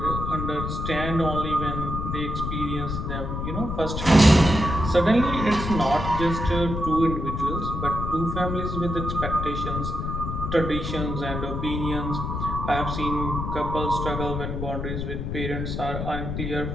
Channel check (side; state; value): left; noise; rumble, 4 dB below the sound